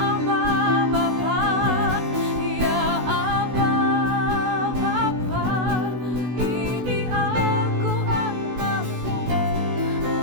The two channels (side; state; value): left; late; 16 ms